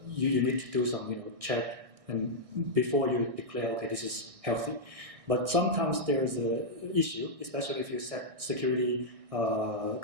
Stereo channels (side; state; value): left; late; 1.6 ms